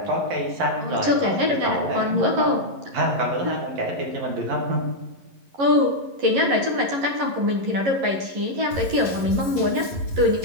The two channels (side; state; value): left; late; 11 ms